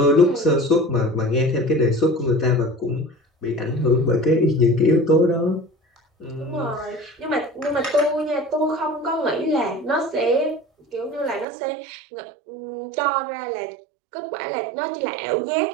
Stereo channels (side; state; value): left; drops out; at 11.5 s